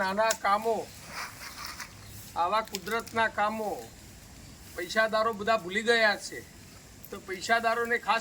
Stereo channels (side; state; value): both; identical; correlation 1.00